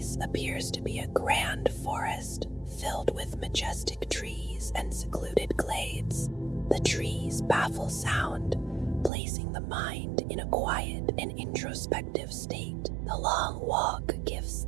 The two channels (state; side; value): drops out; left; at 9.1 s